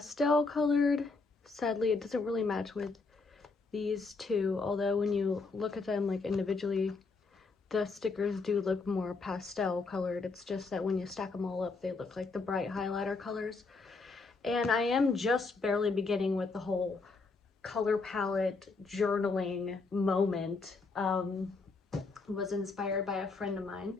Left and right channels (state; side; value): quieter; right; 4.0 dB